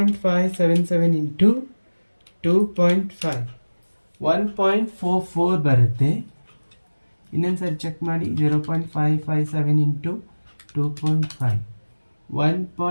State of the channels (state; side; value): inverted; both; correlation -1.00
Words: into 2.5 1.44 ಬರುತ್ತೆ. ಇನ್ನೊಂದ್ಸರಿ ಚೆಕ್ ಮಾಡಿ. 0.557 into 2.5